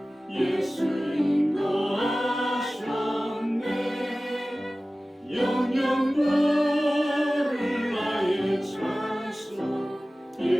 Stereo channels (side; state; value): both; normal; correlation 0.97